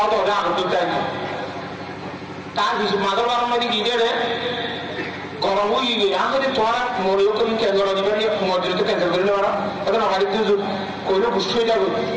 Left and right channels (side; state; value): both; identical; correlation 1.00